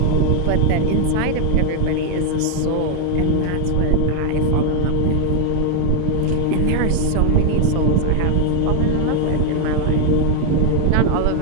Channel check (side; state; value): both; different; correlation 0.00